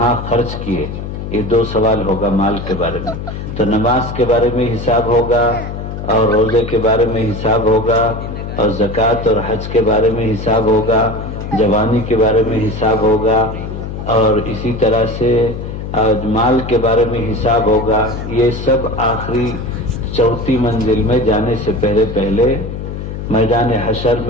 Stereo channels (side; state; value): left; noise; hum, 7 dB below the sound